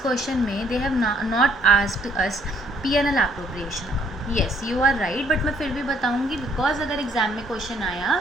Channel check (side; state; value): both; normal; correlation 0.64